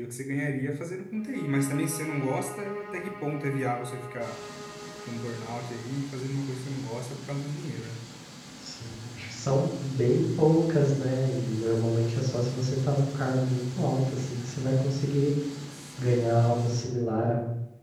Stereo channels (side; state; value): both; identical; correlation 1.00